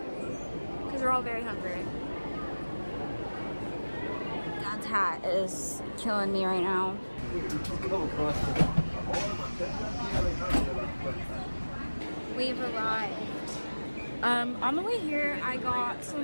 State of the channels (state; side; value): inverted; both; correlation -1.00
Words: because we're all very hungry. Dad's hat is killing me right now. We've arrived. On the way here, I got